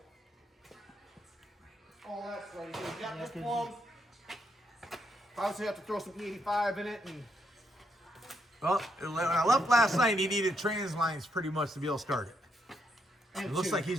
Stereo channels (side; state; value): both; normal; correlation 0.77